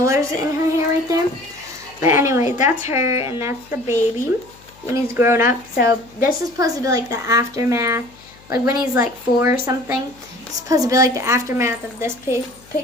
in her hair right there. But anyway, that's her, and that's the baby when he's grown up. So this is supposed to be like the aftermath. Like when he's like 4 or something, it's supposed to be like the aftermath of this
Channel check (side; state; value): left; noise; hum, 26 dB below the sound